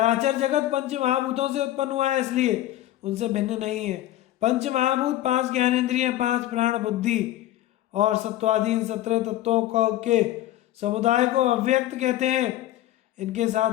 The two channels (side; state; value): right; quieter; 14.2 dB